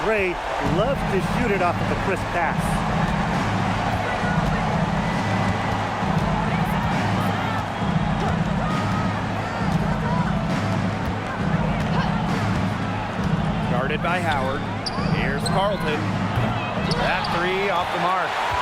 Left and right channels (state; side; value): identical; both; correlation 1.00